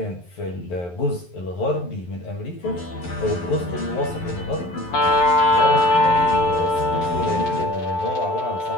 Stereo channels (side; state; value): right; late; 11 ms